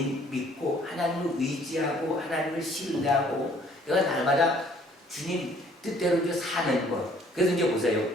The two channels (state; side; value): normal; both; correlation 0.59